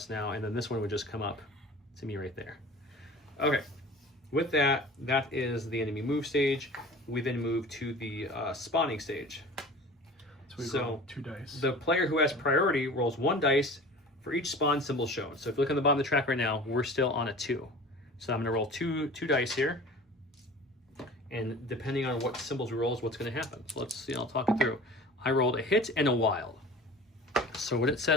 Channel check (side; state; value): both; normal; correlation 0.40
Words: now, and then this one would just come up to me right there. Okay, with that is the enemy move stage. We then move to the spawning stage. So we roll 2 dice. The player who has priority rolls 1 dice for each spawn symbol shown. So if you look on the bottom of the track right now, we're still on a 2. So I'm going to roll two dice here, and depending on what symbols we roll is what's going to happen. So let's see, I'll talk it through. I rolled a hit and a wild. So what it